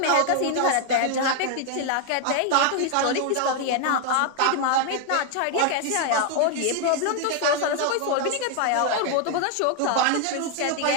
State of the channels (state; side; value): different; both; correlation 0.00